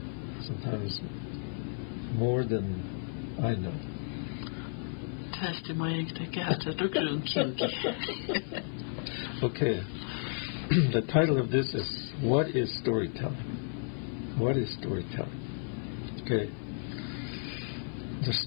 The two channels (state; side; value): silent; right; 55 dB below the other